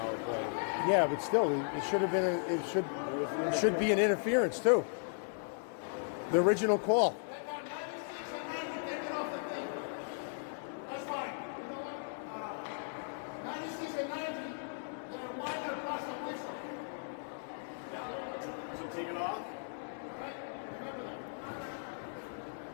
play. Yeah, but still, it should have been. It should be an interference too. The original call. So take it off.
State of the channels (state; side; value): silent; right; digital silence